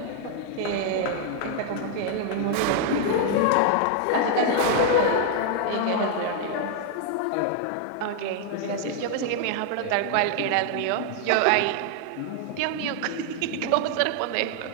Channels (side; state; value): both; different; correlation 0.00